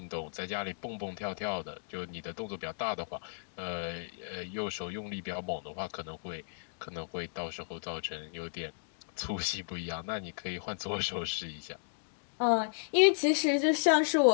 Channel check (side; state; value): right; silent; digital silence